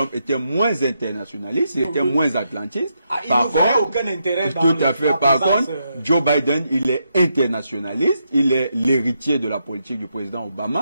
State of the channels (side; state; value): both; inverted; correlation -0.81